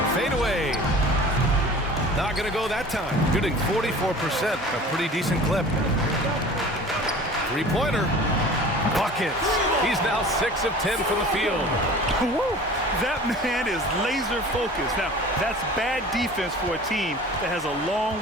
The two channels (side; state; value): both; normal; correlation 0.42